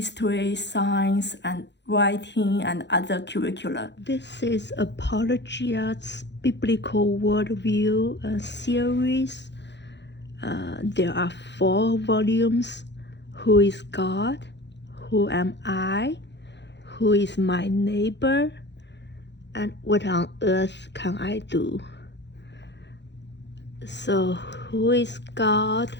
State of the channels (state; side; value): late; right; 0.51 ms